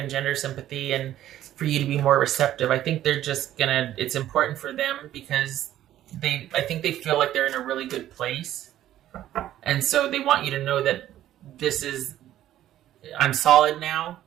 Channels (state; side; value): quieter; left; 12.7 dB